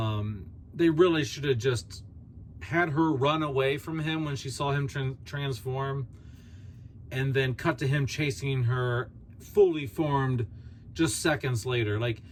really should have just had her run away from him when she saw him transform, and then cut to him chasing her fully formed just seconds later. Like,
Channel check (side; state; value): both; identical; correlation 1.00